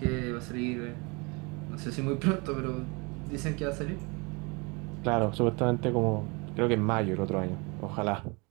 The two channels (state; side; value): quieter; left; 28.8 dB